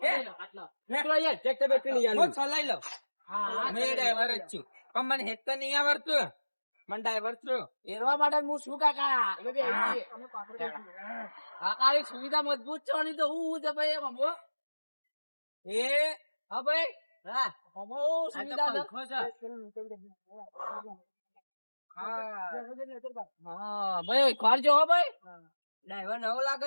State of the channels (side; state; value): both; inverted; correlation -1.00